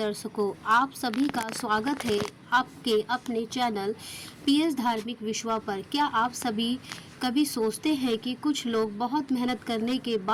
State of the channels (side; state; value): both; identical; correlation 1.00